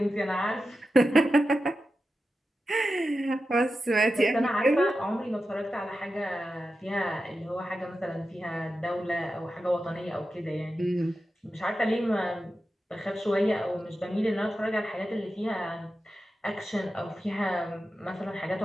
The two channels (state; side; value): normal; both; correlation 0.91